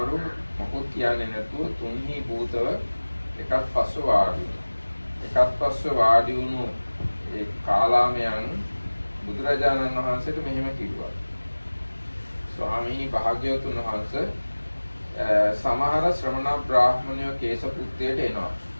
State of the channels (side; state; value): both; inverted; correlation -1.00